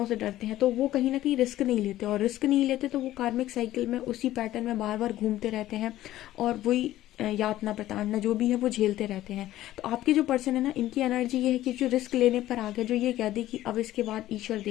से डरते हैं। तो वो कहीं ना कहीं रिस्क नहीं लेते, और रिस्क नहीं लेते तो वो कार्मिक साइकिल में उसी पैटर्न में बार बार घूमते रहते हैं, और वही यातना प्रताड़ना जो भी है वो झेलते रहते हैं। तो आपके जो पर्सन है ना, इनकी एनर्जी ये है कि जो रिस्क लेने पर आ गया, जो ये कह दे कि अब इसके बाद ईश्वर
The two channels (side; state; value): right; quieter; 14.5 dB